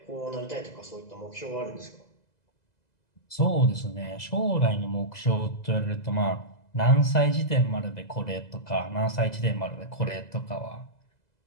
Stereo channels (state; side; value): late; right; 2.0 ms